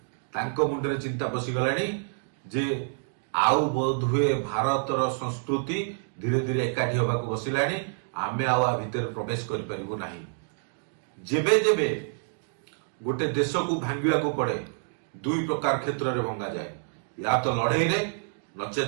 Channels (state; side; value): silent; left; digital silence